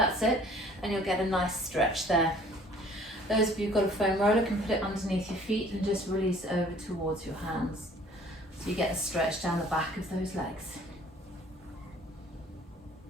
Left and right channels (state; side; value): normal; both; correlation 0.54